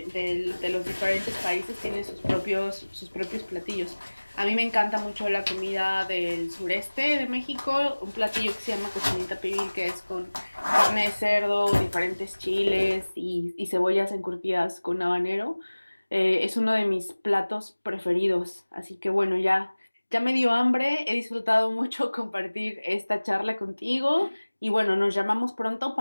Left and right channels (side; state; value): both; inverted; correlation -1.00